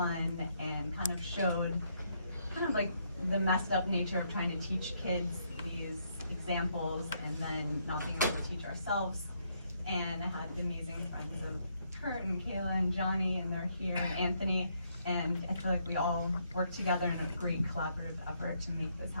and kind of showed kind of like the messed up nature of trying to teach kids these examples and then not being able to teach ourselves. And I had the amazing friends of Kurt and Kayla and Johnny, and they're here, and Anthony, and I feel like we all work together in a great collaborative effort to make this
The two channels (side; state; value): both; inverted; correlation -0.74